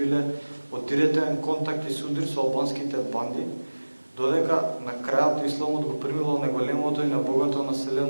од директен контакт и судрир со албанските банди, додека на крајот исламот го примило најголемото и најбогато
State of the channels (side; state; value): both; inverted; correlation -1.00